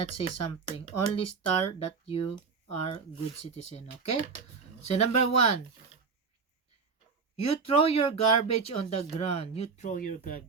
say something. Only star that you are good citizen. Okay? So, number 1. You throw your garbage on the ground. You throw your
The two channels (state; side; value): quieter; left; 5.1 dB